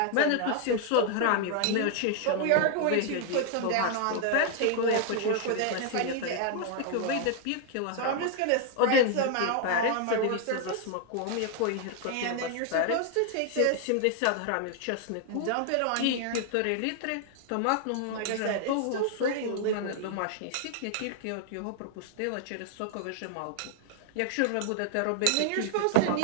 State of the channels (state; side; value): different; both; correlation 0.00